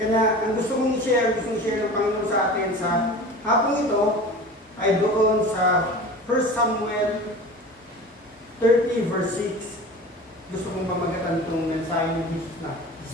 ang gusto kong i-share ng Panginoon sa atin sa hapong ito, ay doon sa 1 Samuel 30 verse 6. Gusto kong pamagatan itong mensahe ni Jesus na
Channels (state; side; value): normal; both; correlation 0.37